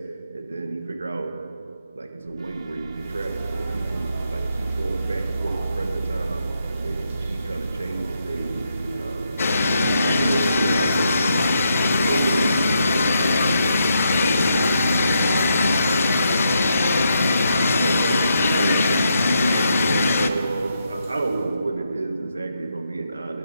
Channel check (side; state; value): both; inverted; correlation -0.80